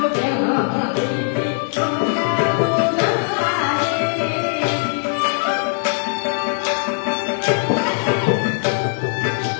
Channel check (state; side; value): silent; right; digital silence